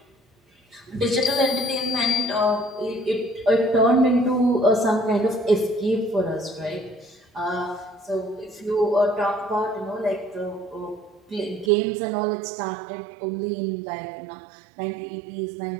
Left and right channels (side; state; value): left; drops out; at 11.7 s